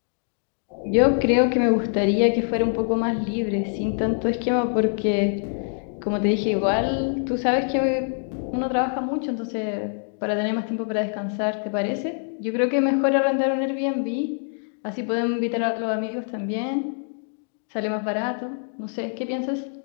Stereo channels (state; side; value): silent; right; 59 dB below the other